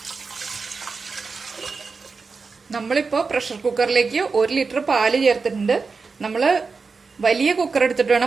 നമ്മളിപ്പോ പ്രഷർ കുക്കറിലേക്ക് 1 ലിറ്റർ പാല് ചേർത്തിട്ടുണ്ട്. നമ്മള് വലിയ കുക്കർ എടുത്തിട്ട്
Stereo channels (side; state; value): left; quieter; 4.6 dB